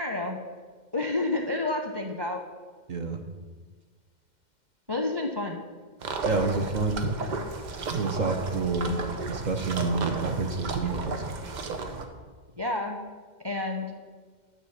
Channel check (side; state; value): left; late; 2.1 ms